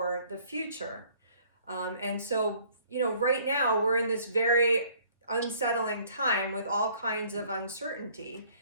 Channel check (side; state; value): both; inverted; correlation -0.58